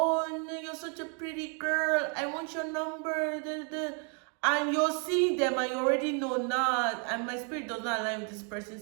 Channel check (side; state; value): left; quieter; 38.5 dB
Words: no, you're such a pretty girl, I want your number, and you're seeing them and you already know, nah, and my spirit does not align with this